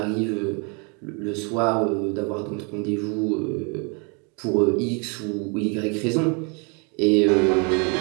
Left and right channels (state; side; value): quieter; left; 34.4 dB